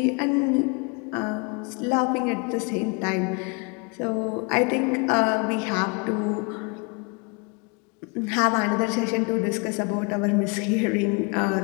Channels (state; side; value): quieter; right; 32.7 dB